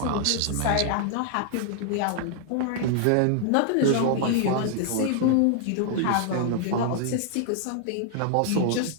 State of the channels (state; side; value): different; both; correlation 0.00